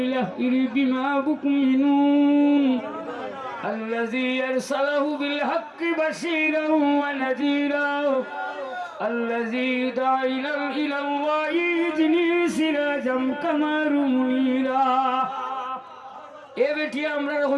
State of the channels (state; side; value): identical; both; correlation 1.00